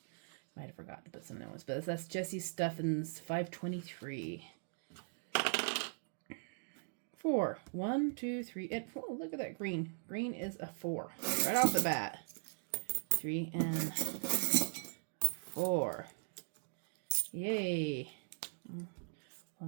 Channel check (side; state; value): left; silent; digital silence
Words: might have forgotten to put some other ones. But that's Jesse Steffens 523. 4. 1, 2, 3, and 4. Look at that green. Green is a 4. Right off the bat. 3 and 4. Yay.